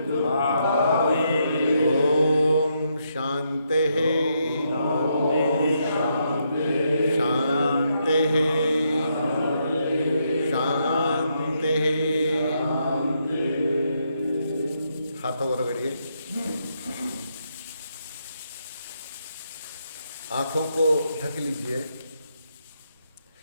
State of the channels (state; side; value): inverted; both; correlation -0.78